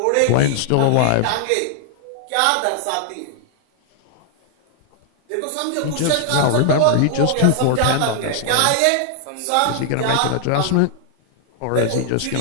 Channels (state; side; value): different; both; correlation 0.00